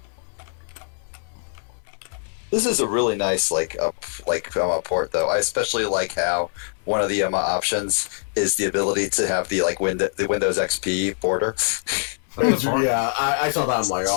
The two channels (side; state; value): right; silent; digital silence